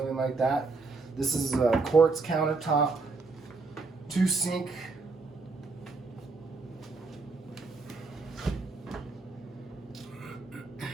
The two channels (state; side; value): quieter; left; 4.0 dB